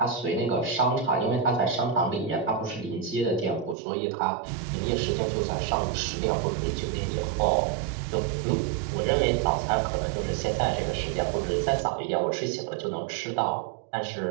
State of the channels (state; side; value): drops out; left; at 3.8 s